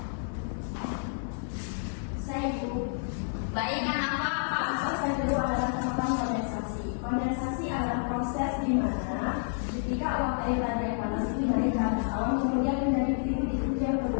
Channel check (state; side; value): silent; right; 58 dB below the other